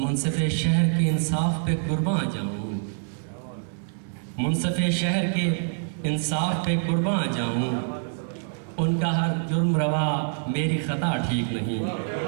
शहर के इंसाफ पे कुर्बान जाऊँ, मुनसिफ़े शहर के इंसाफ पे कुर्बान जाऊँ, उनका हर जुर्म रवा मेरी ख़ता ठीक नहीं।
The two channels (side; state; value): left; silent; 61 dB below the other